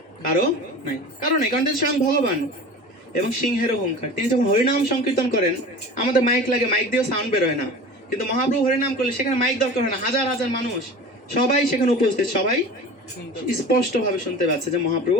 কারো নাই। কারণ তিনি স্বয়ং ভগবান। এবং সিংহের অহংকার, তিনি যখন হরিনাম সংকীর্তন করেন, আমাদের মাইক লাগে, মাইক দিয়েও সাউন্ড বেরোয় না, কিন্তু মহাপ্রভু হরিনাম করলে সেখানে মাইক দরকার হয় না, হাজার হাজার মানুষ সবাই সেখানে উপস্থিত, সবাই স্পষ্ট ভাবে শুনতে পাচ্ছে যে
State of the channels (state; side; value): normal; both; correlation 0.37